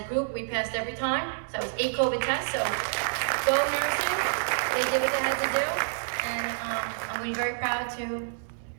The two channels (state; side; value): silent; left; digital silence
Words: group, we passed every time. So it was 8 COVID tests, so go nursing. They did what they had to do, and I'm going to be very proud to